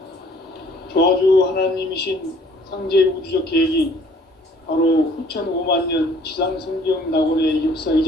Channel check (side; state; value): both; normal; correlation 0.57